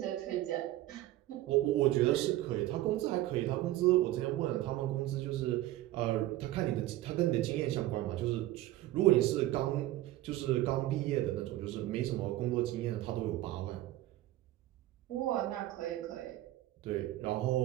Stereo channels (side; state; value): left; quieter; 15.6 dB